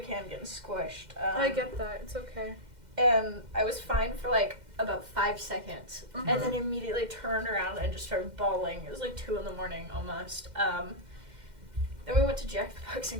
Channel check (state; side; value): late; left; 2.1 ms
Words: getting squished. I get that. It's okay. And I was fine for like about 5 seconds, Mhm. and then immediately turned around and just started bawling. It was like 2 a.m. almost. Then we went to Jack in the Box